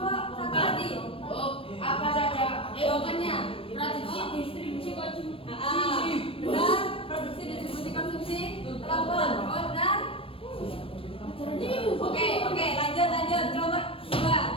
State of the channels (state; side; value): late; right; 0.27 ms